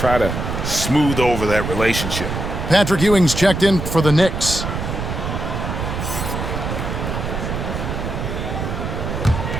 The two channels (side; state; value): right; noise; rumble, 4 dB below the sound